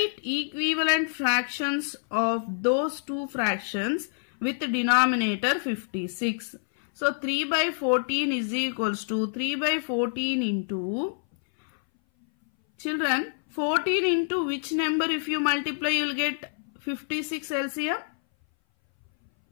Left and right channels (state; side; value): silent; right; 58 dB below the other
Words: equivalent fractions of those two fractions with denominator 56. So 3 by 14 is equals to 3 by 14 into, children, 14 into which number if you multiply you will get 56 LCM?